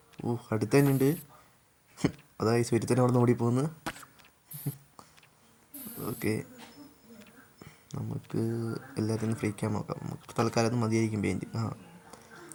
അടുത്ത് തന്നെ ഉണ്ട്. അതാ ഈ സ്വരുത്തന്നെ അവിടെ നിന്ന് ഓടിപ്പോകുന്നു. ഓക്കെ, നമുക്ക് എല്ലാത്തിനും ഫ്രീക്കാൻ നോക്കാം. നമുക്ക് തൽക്കാലം അത് മതിയായിരിക്കും പെയിൻറ്റ്.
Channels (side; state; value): both; identical; correlation 1.00